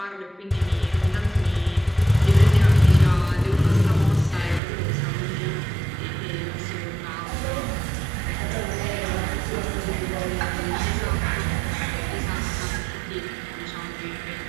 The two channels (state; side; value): drops out; left; at 4.6 s